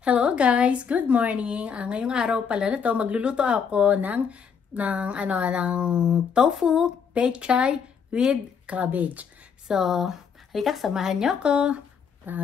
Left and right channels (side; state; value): right; quieter; 6.7 dB